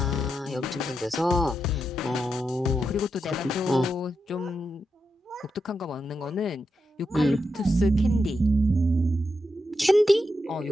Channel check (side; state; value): both; normal; correlation 0.86